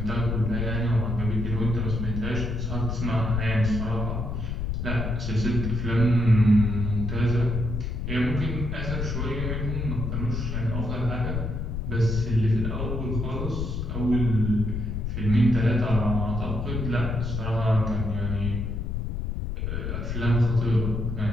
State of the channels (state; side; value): noise; left; rumble, 3 dB below the sound